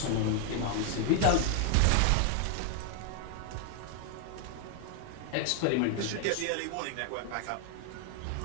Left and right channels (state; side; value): different; both; correlation 0.00